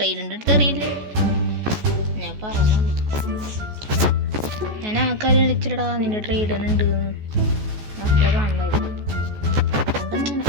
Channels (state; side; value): late; left; 14 ms